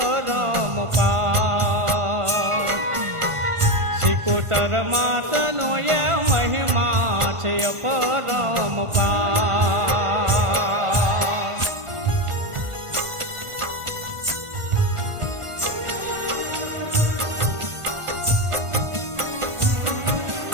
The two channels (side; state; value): left; late; 1.5 ms